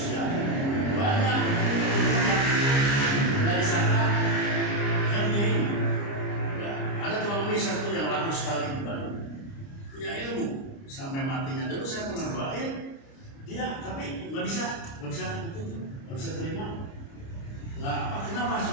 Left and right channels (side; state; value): right; late; 29 ms